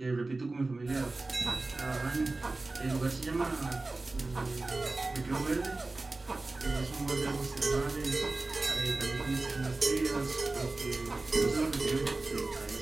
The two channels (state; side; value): quieter; left; 3.3 dB